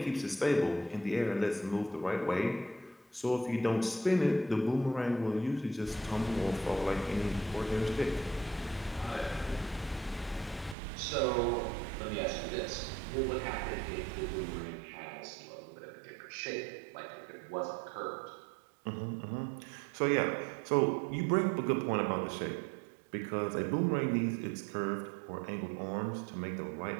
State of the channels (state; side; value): drops out; left; at 10.8 s